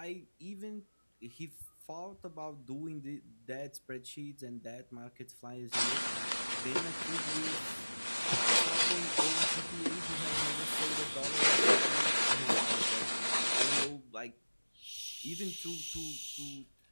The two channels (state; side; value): inverted; both; correlation -1.00